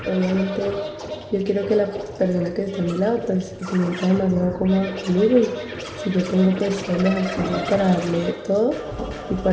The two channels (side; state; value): both; identical; correlation 1.00